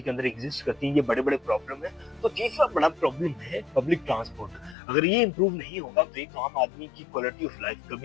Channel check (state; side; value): drops out; right; at 4.8 s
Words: के अंदर एग्जिस्ट करती है, ये बड़े बड़े प्रॉब्लम है। तो तीसरा बड़ा प्रॉब्लम है पब्लिक ट्रांसपोर्ट। अगर ये इंप्रूव नहीं होगा तो एक आम आदमी की क्वालिटी ऑफ लाइफ